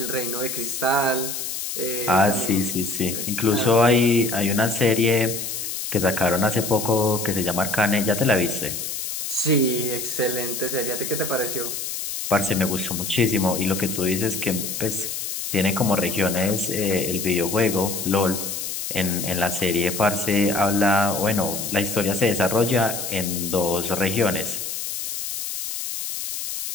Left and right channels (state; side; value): noise; left; hiss, 5 dB below the sound